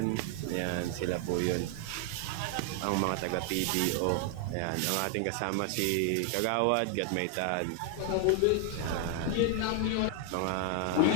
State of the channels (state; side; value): different; both; correlation 0.00